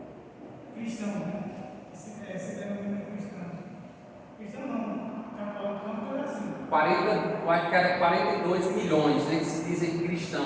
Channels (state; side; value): identical; both; correlation 1.00